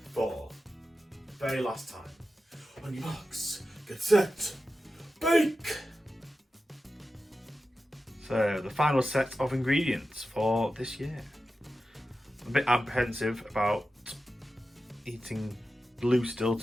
For the very last time, on your marks, get set, bake! So, the final set of ingredients for this year. I'm a bit apprehensive about eating blue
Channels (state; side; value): normal; both; correlation 0.92